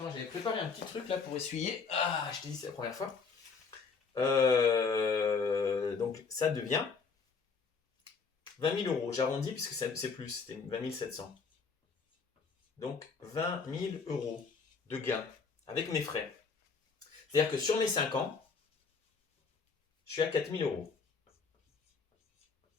j'avais préparé un petit truc là pour essuyer. Ah, je t'ai dit, c'est la première fois. Donc, ça devient 20 000 euros. J'arrondis puisque c'est plus, c'était 20 700. Donc 20 000 euros de gain avec mes frais. C'est-à-dire que sur mes 5 ans, je suis à 4 000 euros.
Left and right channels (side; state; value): right; quieter; 5.1 dB